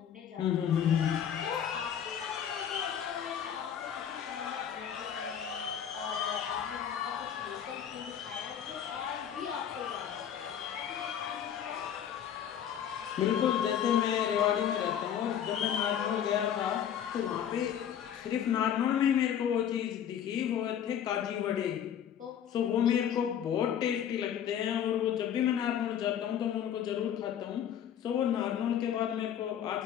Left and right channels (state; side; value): quieter; right; 9.3 dB